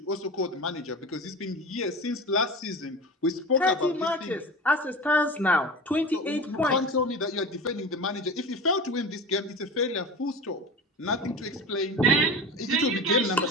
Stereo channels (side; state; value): both; normal; correlation 0.30